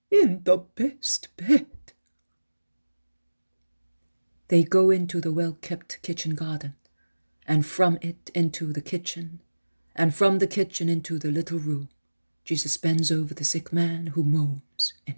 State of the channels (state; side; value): inverted; both; correlation -1.00